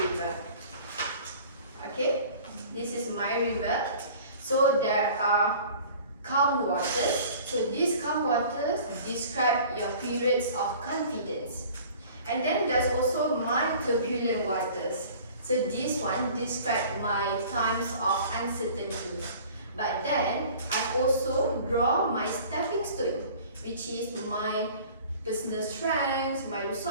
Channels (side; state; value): both; inverted; correlation -0.46